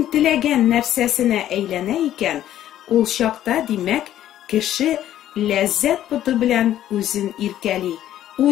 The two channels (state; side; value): quieter; right; 12.1 dB